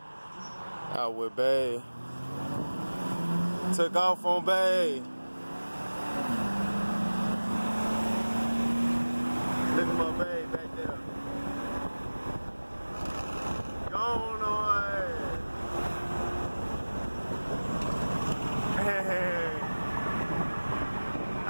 Out with Bay. Took off on Bay. Look at my Bay back there. Gone on. Hey,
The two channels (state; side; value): inverted; both; correlation -1.00